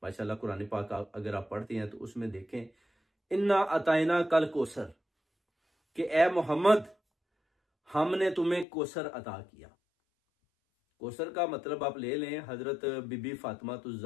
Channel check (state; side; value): drops out; right; at 8.7 s